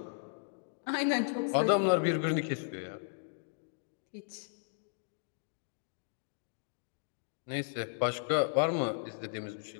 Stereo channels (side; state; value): right; silent; digital silence